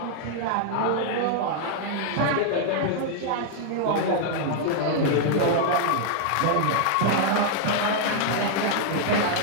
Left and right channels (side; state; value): both; different; correlation -0.01